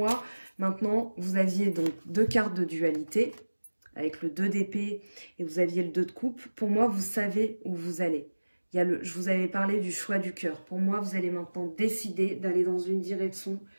maintenant, vous aviez donc 2 cartes de dualité, avec le 2 d'épée et vous aviez le 2 de coupe. Pour moi, vous savez où vous allez. Je vous avais parlé du choix du cœur. Pour moi, vous allez maintenant décider d'aller dans une direction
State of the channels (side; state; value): both; inverted; correlation -1.00